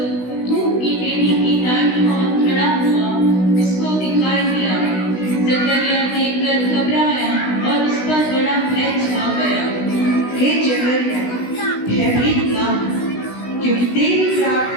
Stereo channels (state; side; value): late; right; 16 ms